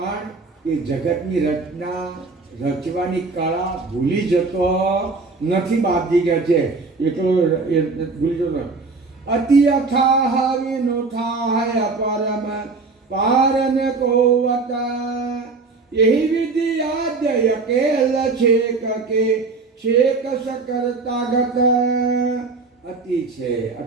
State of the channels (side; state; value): left; quieter; 4.0 dB